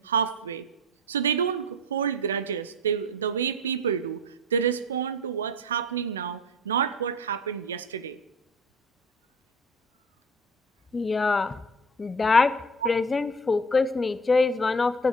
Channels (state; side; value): normal; both; correlation 0.34